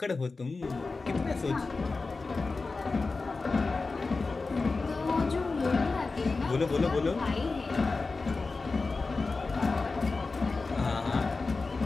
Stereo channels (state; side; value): quieter; right; 3.9 dB